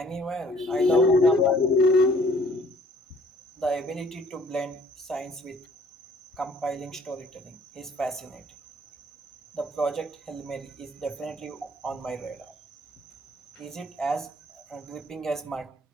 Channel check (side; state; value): both; normal; correlation 0.58